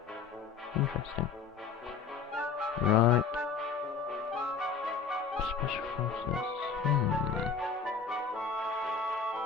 Interesting. Right. Special forces.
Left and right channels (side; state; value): right; quieter; 5.8 dB